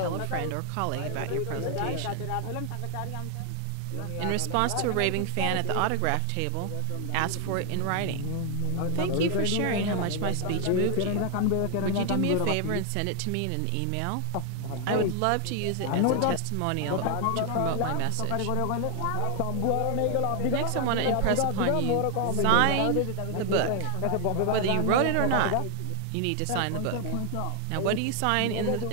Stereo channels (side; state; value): both; different; correlation 0.00